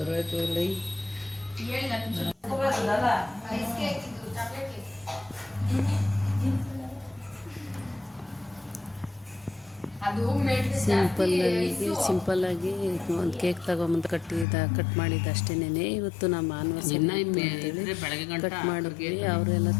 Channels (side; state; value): right; drops out; at 14.5 s